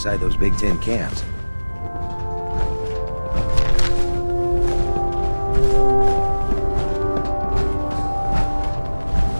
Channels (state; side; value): inverted; both; correlation -1.00